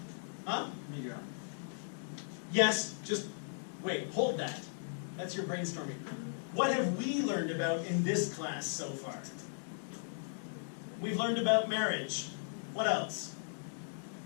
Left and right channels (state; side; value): silent; right; digital silence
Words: Huh? Yes, just wait, hold that. That's your brainstorming. What have we learned about in this class so far? We've learned about marriage. What else?